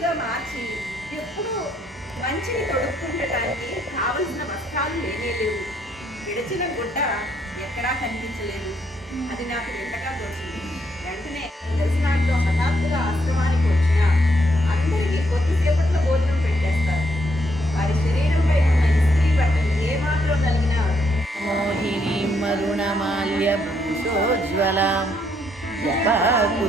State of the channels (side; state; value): both; normal; correlation 0.74